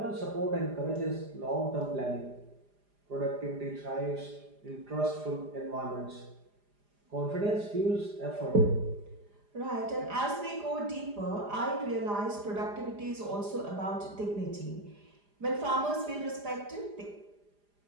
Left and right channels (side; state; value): left; late; 4.9 ms